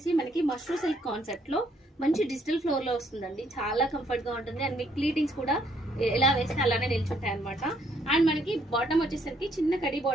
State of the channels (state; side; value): normal; both; correlation 0.69